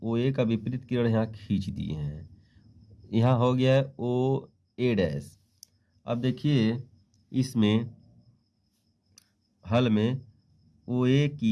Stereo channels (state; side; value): identical; both; correlation 1.00